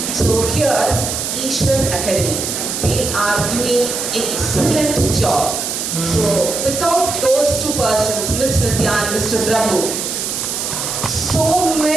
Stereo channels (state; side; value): noise; right; hiss, 3 dB below the sound